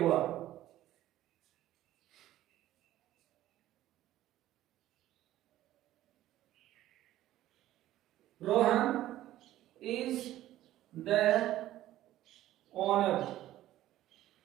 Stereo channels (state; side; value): quieter; left; 14.1 dB